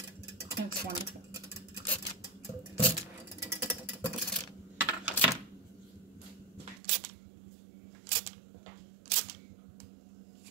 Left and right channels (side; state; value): left; drops out; at 6.8 s